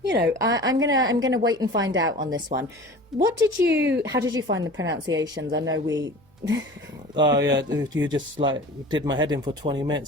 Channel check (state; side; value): normal; both; correlation 0.39